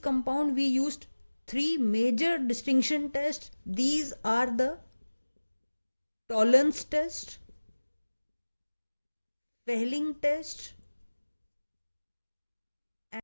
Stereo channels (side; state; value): both; inverted; correlation -1.00